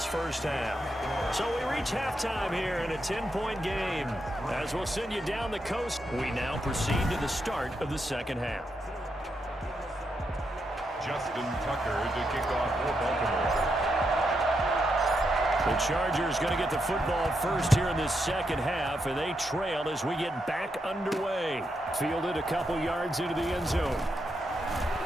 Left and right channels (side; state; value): both; normal; correlation 0.82